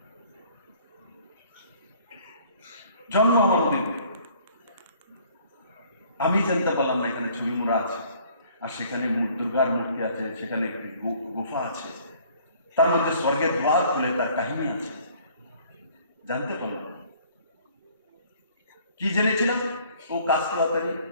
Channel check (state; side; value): inverted; both; correlation -0.57